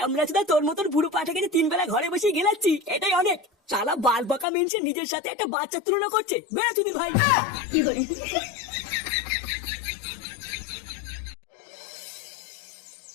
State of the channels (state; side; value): drops out; right; at 4.5 s